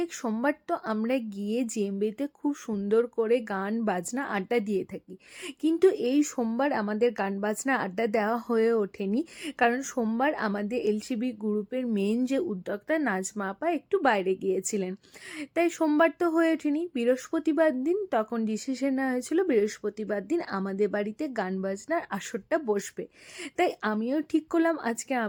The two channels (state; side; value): identical; both; correlation 1.00